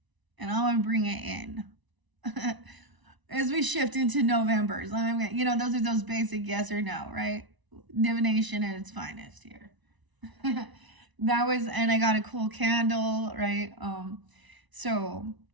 And I'm going to bring it in. As we shift into November's, those are those basic yes or no, right? Divination at its finest here. And I got a cool candle, right? So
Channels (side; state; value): left; late; 1.0 ms